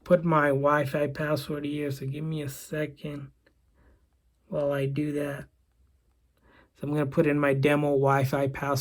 put my Wi-Fi password here. So give me a second while I do that. So I'm going to put in my demo Wi-Fi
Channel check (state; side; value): identical; both; correlation 1.00